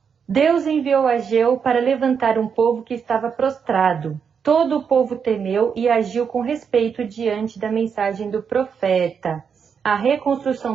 Deus enviou Ageu para levantar um povo que estava prostrado. Todo o povo temeu e agiu com respeito diante da mensagem do profeta. A reconstrução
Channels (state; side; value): quieter; left; 6.7 dB